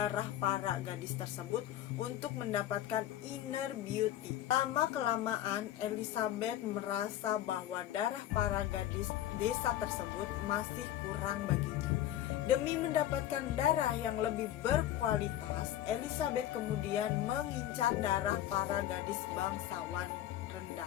para gadis tersebut untuk mendapatkan inner beauty. Lama-kelamaan, Elizabeth merasa bahwa darah para gadis desa tersebut masih kurang baginya. Demi mendapatkan darah yang lebih berkualitas, Elizabeth kemudian mengincar darah para gadis bangsawan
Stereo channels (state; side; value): quieter; right; 12.7 dB